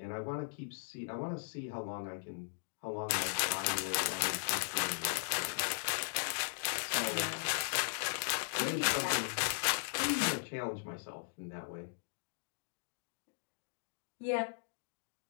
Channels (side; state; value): right; silent; digital silence